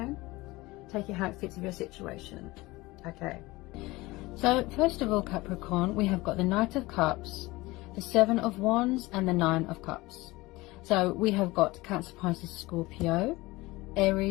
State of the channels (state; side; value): quieter; right; 20.8 dB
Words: take it how it fits with your situation. Okay, so first of all Capricorn, we have got the Knight of Cups, the Seven of Wands and the Nine of Cups. So we have got Cancer, Pisces, Scorpio,